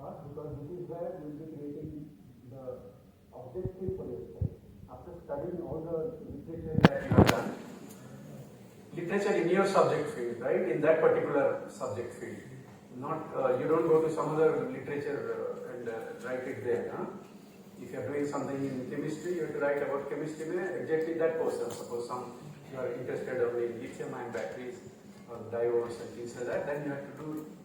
because this is where you will be creating the objective for your study. After studying all the literature that you have done, literature in your subject field, right? In that particular subject field. Not you don't go to some other literature and write it there. Huh? If you are doing something in chemistry, you have to write about chemistry exactly that portion. Suppose you are interested only in lithium-ion batteries or diodes and things like that, then you have to do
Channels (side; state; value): both; identical; correlation 1.00